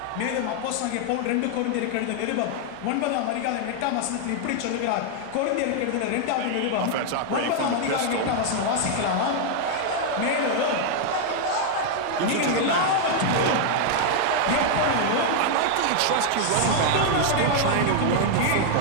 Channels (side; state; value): both; different; correlation 0.00